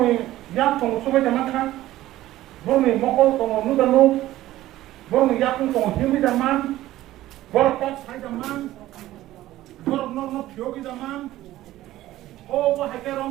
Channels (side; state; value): left; quieter; 15.2 dB